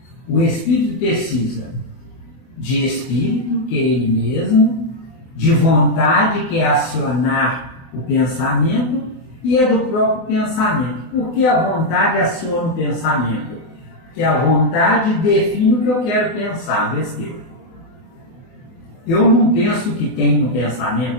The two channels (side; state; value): right; late; 37 ms